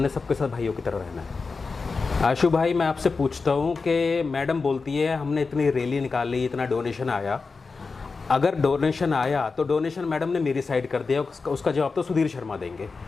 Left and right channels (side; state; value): right; quieter; 4.4 dB